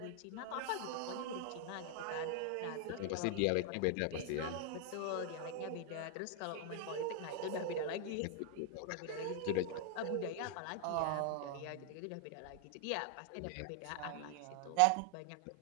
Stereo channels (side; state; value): both; different; correlation 0.00